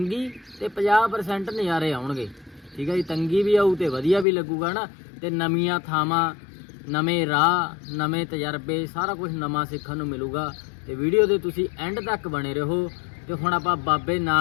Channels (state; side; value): drops out; right; at 4.2 s